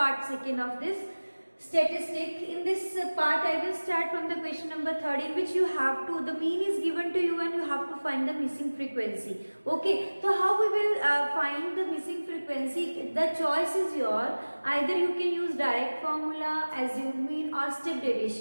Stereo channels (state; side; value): inverted; both; correlation -1.00